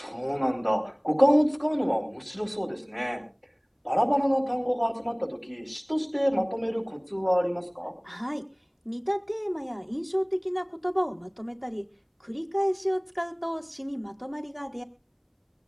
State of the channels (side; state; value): both; identical; correlation 1.00